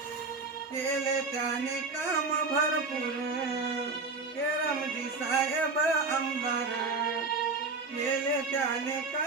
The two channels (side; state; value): left; quieter; 4.0 dB